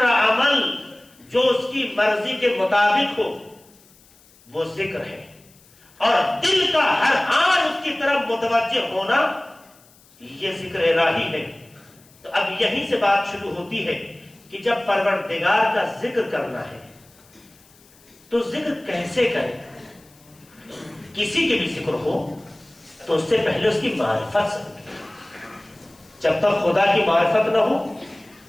عمل جو اس کی مرضی کے مطابق ہو وہ ذکر ہے، اور دل کا ہر آن اس کی طرف متوجہ ہونا یہ ذکر الہی ہے، تو اب یہیں سے بات شروع ہوتی ہے کہ جب پروردگار کا ذکر کرنا ہے تو ذکر کیسے کرے؟ کسی کے بھی ذکر ہو تو اس سے پہلے اس کی معرفت سے، جب تک خدا کی معرفت نہ ہو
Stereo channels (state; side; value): noise; left; hiss, 28 dB below the sound